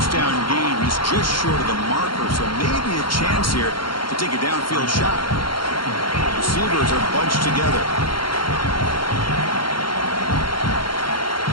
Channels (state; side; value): late; right; 0.73 ms